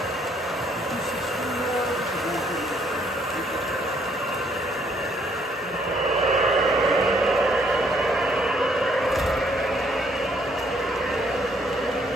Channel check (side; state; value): both; normal; correlation 0.67